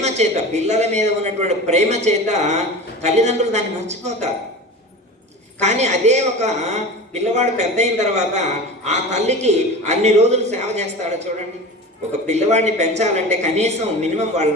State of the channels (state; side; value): normal; both; correlation 0.33